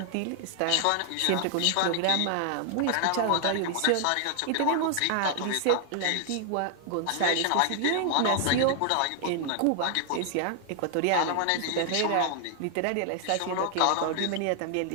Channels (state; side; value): different; both; correlation 0.00